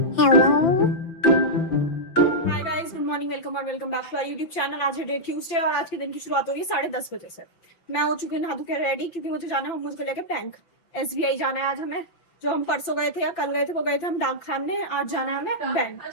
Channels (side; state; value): right; late; 5.9 ms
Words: हाय guys, good morning, welcome और welcome back to our YouTube channel. आज है day Tuesday और आज के दिन की शुरुआत हो रही है 10:30 बजे से। मैं हो चुकी हूँ नहा धो के रेडी, क्योंकि मुझे जाना है मुझको लेके बैंक। SBI जाना है आज हमें। जो हम परसों गए थे या कल गए थे वो गए थे हम डाक खाने, आज जाना है हमें बैंक,